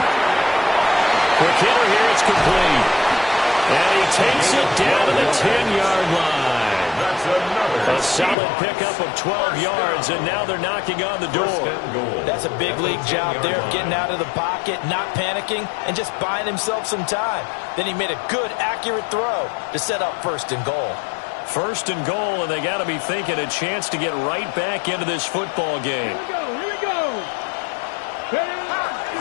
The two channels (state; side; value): drops out; right; at 8.3 s